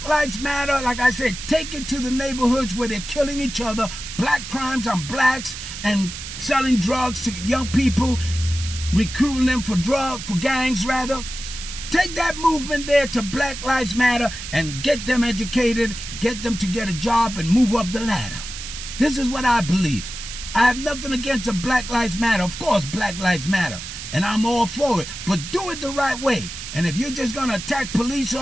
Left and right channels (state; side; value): noise; right; hiss, 9 dB below the sound